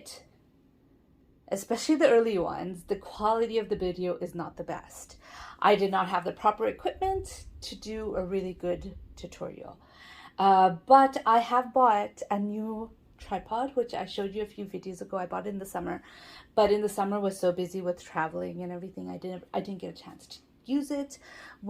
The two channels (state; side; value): identical; both; correlation 1.00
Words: especially the early ones, the quality of the video is not the best. I did not have the proper equipment to do a really good tutorial. But I have bought a new tripod, which I showed you a few videos ago. I bought it in the summer, but in the summer was so busy with traveling and everything, I didn't get a chance to use it.